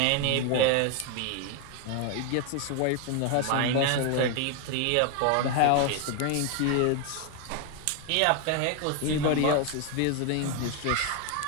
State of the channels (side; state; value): both; different; correlation 0.01